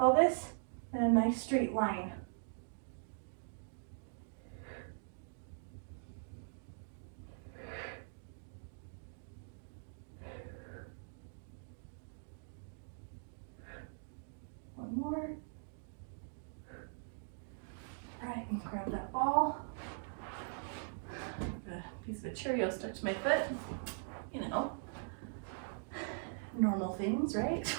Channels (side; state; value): left; silent; digital silence